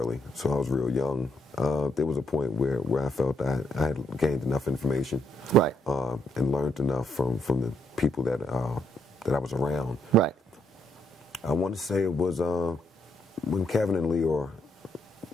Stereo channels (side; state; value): both; normal; correlation 0.73